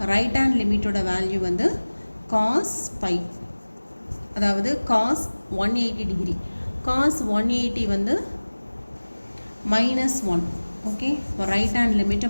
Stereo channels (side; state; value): both; inverted; correlation -1.00